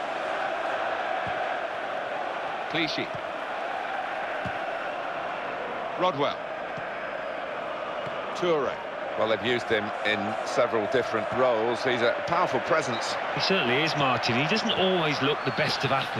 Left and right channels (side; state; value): both; identical; correlation 1.00